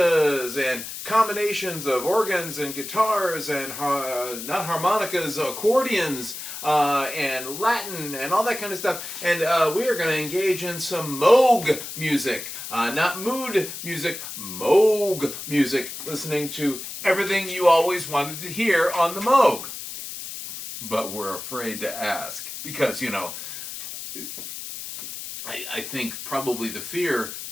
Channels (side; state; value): left; noise; hiss, 9 dB below the sound